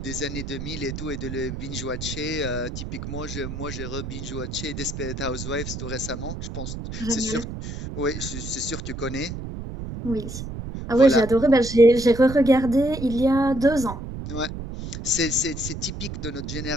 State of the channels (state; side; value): noise; right; rumble, 7 dB below the sound